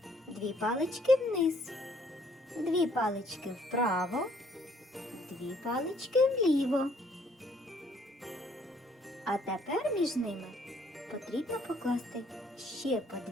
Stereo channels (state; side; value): normal; both; correlation 0.64